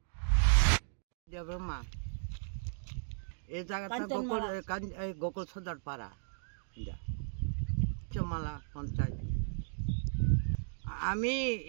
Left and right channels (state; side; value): silent; left; digital silence